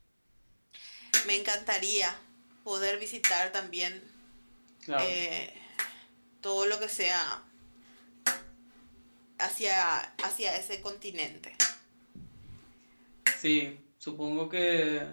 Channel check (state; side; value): inverted; both; correlation -1.00